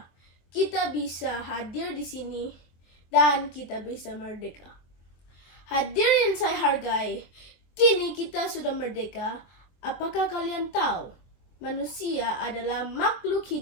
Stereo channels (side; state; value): right; late; 24 ms